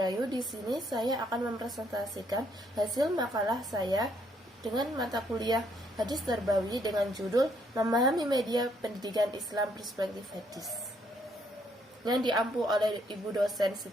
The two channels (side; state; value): both; normal; correlation 0.70